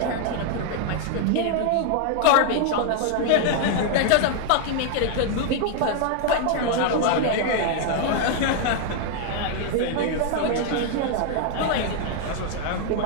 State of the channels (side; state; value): both; different; correlation 0.00